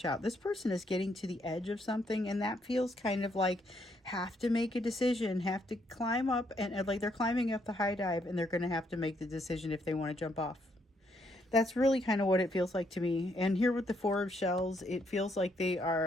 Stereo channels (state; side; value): normal; both; correlation 0.73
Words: out. This person is getting to the edge of something, and that feels kind of like have to make a decision, have to climb up, and like they're climbing up the high dive, and they're going to have to make the decision if they want to jump off. That's really kind of what it feels like to me. And here with the Four of Shells, it feels like they